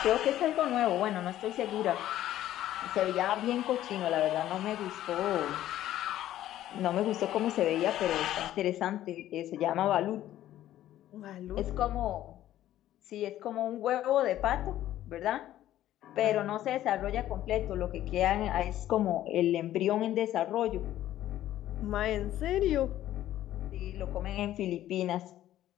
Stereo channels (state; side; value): quieter; right; 13.1 dB